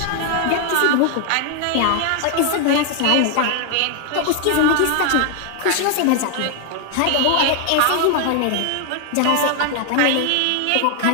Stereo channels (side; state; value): both; different; correlation 0.00